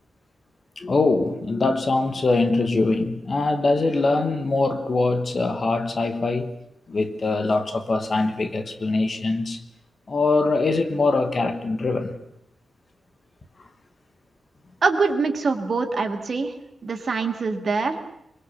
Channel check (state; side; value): normal; both; correlation 0.89